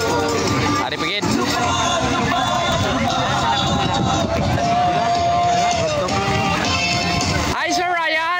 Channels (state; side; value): identical; both; correlation 1.00